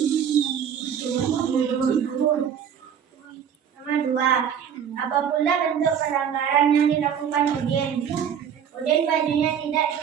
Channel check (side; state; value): left; quieter; 8.2 dB